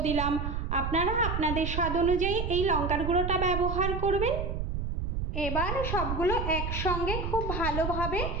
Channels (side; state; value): right; noise; rumble, 3 dB below the sound